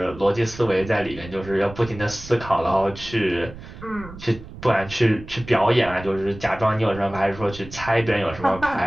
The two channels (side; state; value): right; noise; rumble, 15 dB below the sound